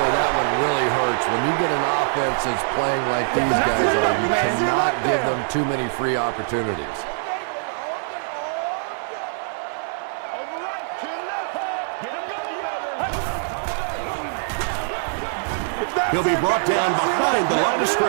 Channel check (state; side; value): silent; left; 55 dB below the other